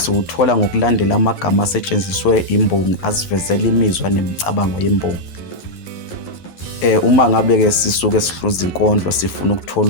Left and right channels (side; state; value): right; late; 11 ms